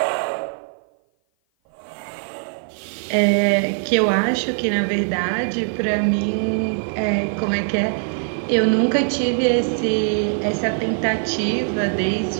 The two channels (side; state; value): left; silent; 55 dB below the other